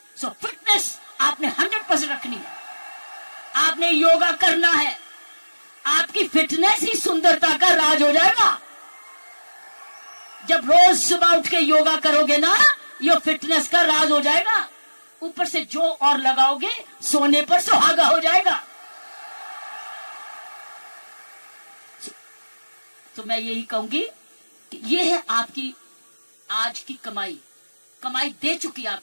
सो फिटनेस आपने 100% रखनी है, आपने योगा करना है, आपकी फिटनेस ही सुंदरता का राज हो जाएगा। जब रोज सुबह उठ के योगा करोगे ना, ये फिटनेस का राज हो जाएगा। ऊपर से जो और लगाओगे, सोने पर सुहागा हो जाएगा। तो मैं यही कहूंगी कि ये है आपकी आज की कमाई। कमाई दे चुकी है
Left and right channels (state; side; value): inverted; both; correlation -1.00